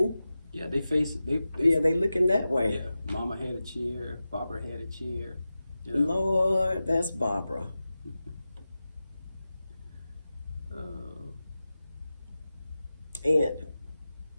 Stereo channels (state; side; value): inverted; both; correlation -0.94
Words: Yeah, they face it. They looking that way. Yeah, Mama had a chair. Barbara had a chair. You know? Lord, that's Barbara. Aunt